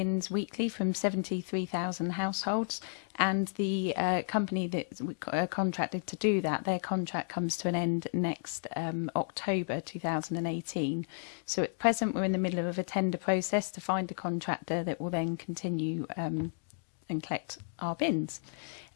weekly from 73,000 households, and the company that contracted to do that, their contract comes to an end next October 2018. So at present we're in the middle of a tender process to find a contractor that will then continue and collect our bins.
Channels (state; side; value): silent; right; digital silence